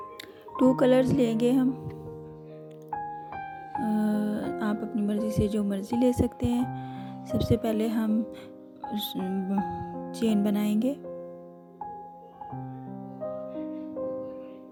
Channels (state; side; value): identical; both; correlation 1.00